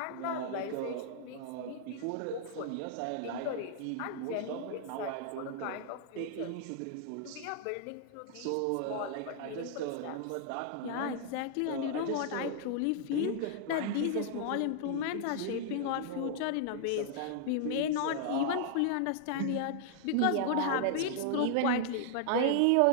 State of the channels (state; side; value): different; both; correlation -0.01